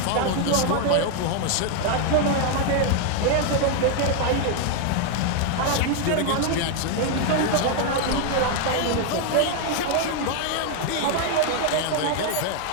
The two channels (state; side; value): different; both; correlation 0.00